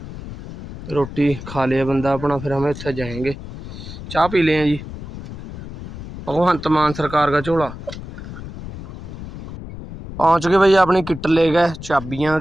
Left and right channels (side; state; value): left; noise; rumble, 12 dB below the sound